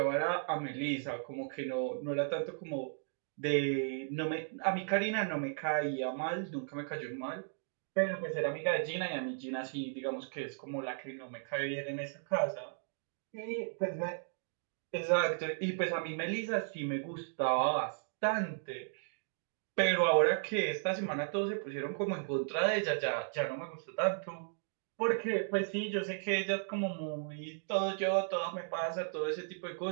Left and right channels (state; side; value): silent; left; digital silence